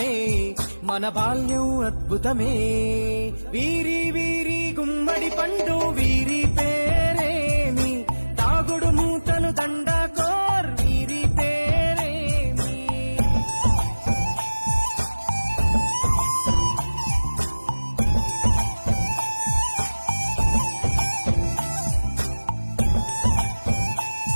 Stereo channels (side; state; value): both; inverted; correlation -1.00